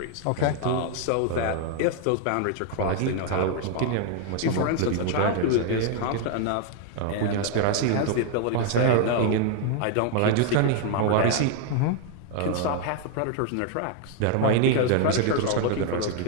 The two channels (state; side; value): different; both; correlation 0.00